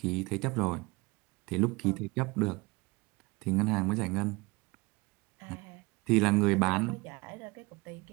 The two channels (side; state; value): left; quieter; 24.8 dB